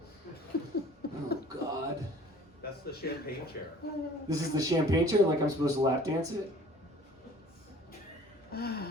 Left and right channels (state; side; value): normal; both; correlation 0.50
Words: Oh God. That's the champagne chair. This is the champagne chair, like I'm supposed to lap dance it?